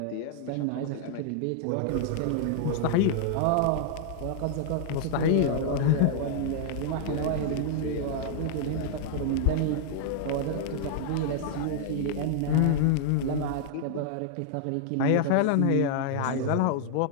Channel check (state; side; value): different; both; correlation -0.01